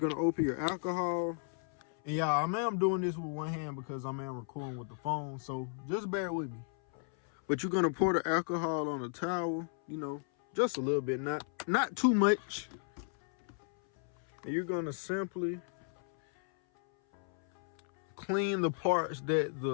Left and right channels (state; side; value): silent; right; 55 dB below the other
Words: gonna open your alcohol. And y'all, I'm doing this with one hand because I'm recording with the phone, so just bear with me. But you're gonna pour the alcohol on the towel, you know, just a little bit, not too much. And you're gonna simply clean the parts that